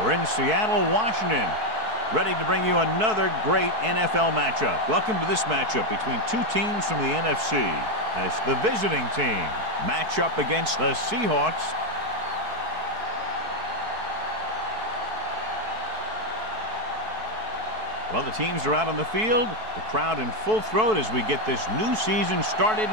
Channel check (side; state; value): left; late; 4.6 ms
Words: We're in Seattle, Washington, ready to bring you another great NFL matchup. Welcome to this matchup between two teams from the NFC as the visiting team match up against the Seahawks. Well, the teams are out on the field, the crowd in full throat as we get this new season